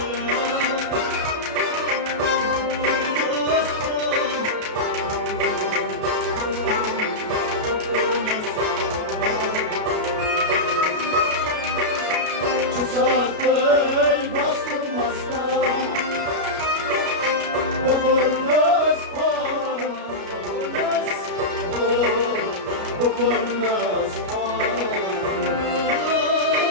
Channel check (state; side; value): late; left; 33 ms